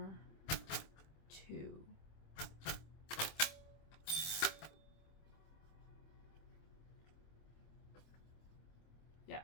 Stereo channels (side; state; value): right; late; 26 ms